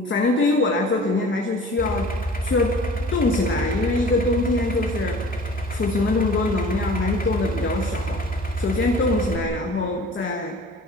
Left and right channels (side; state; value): both; normal; correlation 0.45